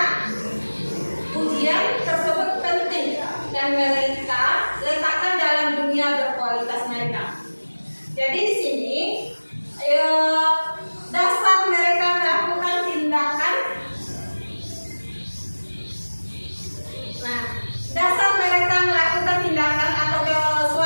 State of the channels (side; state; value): both; inverted; correlation -1.00